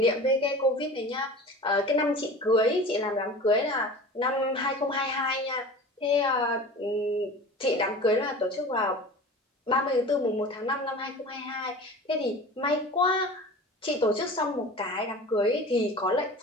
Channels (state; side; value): normal; both; correlation 0.37